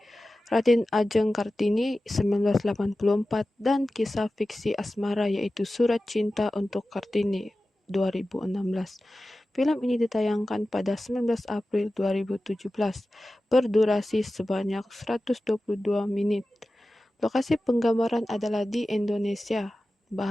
Raden Ajeng Kartini 1984 dan kisah fiksi asmara yaitu Surat Cinta untuk Kartini 2016. Film ini ditayangkan pada 19 April 2017, berdurasi sebanyak 122 menit. Lokasi penggambaran adalah di Indonesia.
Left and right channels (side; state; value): both; normal; correlation 0.95